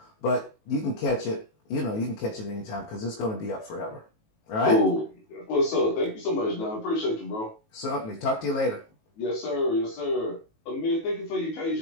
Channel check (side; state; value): right; late; 19 ms